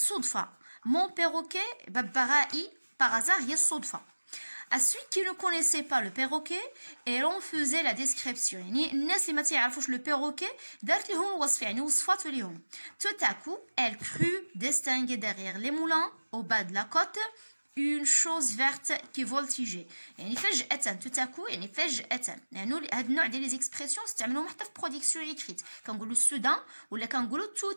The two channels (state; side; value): inverted; both; correlation -1.00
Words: mon perroquet ببغائي par hasard هي الصدفة. À celui qui ne connaissait pas le perroquet et l'on faisait la description يعني الناس اللي ما تعرفوش le perroquet دارت لهم الوصف يعني وصفات لهم. Tout à coup elle crut distinguer derrière les moulins au bas de la côte une chose verte qui voltigeait يعني فجأة tout à coup يعني فجأة يعني هذا النوع ديال لي زيكسبرسيون استعملوهم حتى في برودكسيون ايكريت كنقولوا سودان ولا كنقولوا